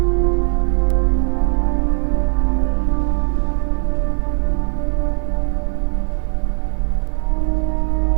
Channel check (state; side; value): silent; left; digital silence